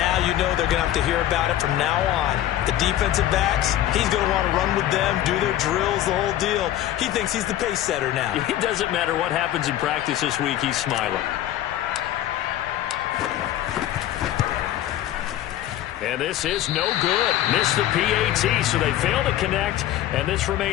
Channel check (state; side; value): quieter; right; 13.0 dB